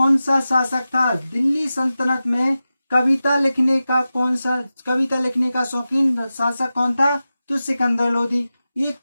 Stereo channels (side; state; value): both; inverted; correlation -0.94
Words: सा शासक था? दिल्ली सल्तनत में कविता लिखने का शौकीन शासक कौन था? तो सिकंदर लोधी। ये